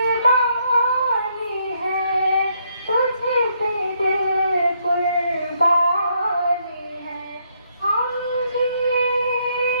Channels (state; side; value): inverted; both; correlation -0.73